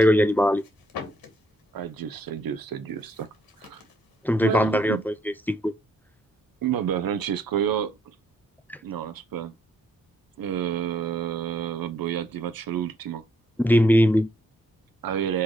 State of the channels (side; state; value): both; normal; correlation 0.69